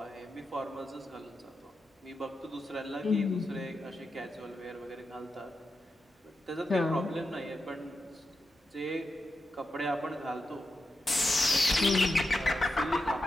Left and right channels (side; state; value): both; normal; correlation 0.88